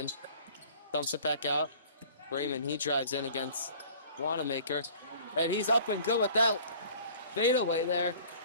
Dumps it back out. Raymond, he drives in against Wanamaker. And he's up and good with that fadeaway there.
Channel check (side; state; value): both; inverted; correlation -0.48